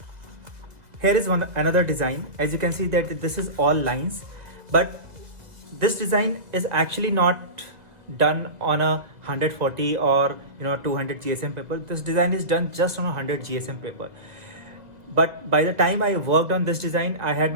Here is another design. As you can see that this is all lines, but this design is actually not done on a 140 or 200 GSM paper. This design is done just on a 100 GSM paper. But by the time I worked on this design, I had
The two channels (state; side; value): late; left; 1.8 ms